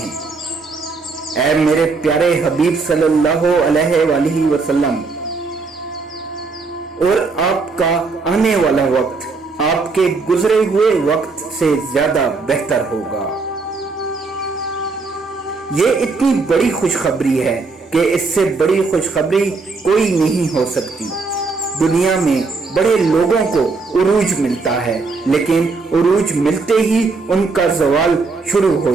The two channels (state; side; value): quieter; left; 4.2 dB